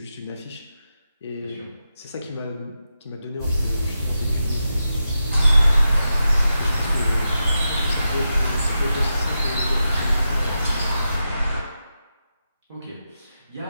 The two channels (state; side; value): inverted; both; correlation -0.88